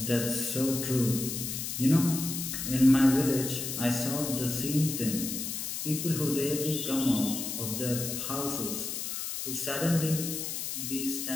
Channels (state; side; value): noise; left; hiss, 4 dB below the sound